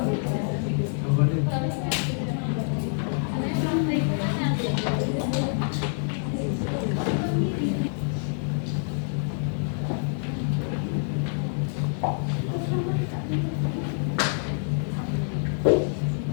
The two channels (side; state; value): right; silent; 60 dB below the other